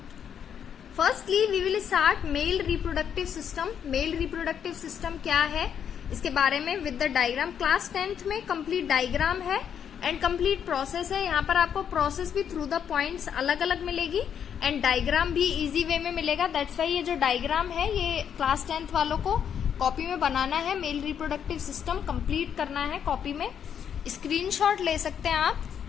Firstly we will start male reproductive system. Male reproductive system क्या है इसके बारे में with the diagram. Class 10th में कंप्लीट डायग्राम है एंड कंप्लीट प्रोसेस है। यहाँ पर आपको प्रोसेस भी थ्रू द पॉइंट्स अलग अलग मिलेगी एंड डायग्राम भी इजी वे में मिलेगा। दैट्स वाई ये जो डायग्राम है ये क्लास 10th वालों को कॉपी में बनाना है, मेल रिप्रोडक्टिव सिस्टम कंप्लीट करना है कॉपी में। स्क्रीनशॉट ले सकते हैं आप,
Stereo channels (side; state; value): right; quieter; 8.3 dB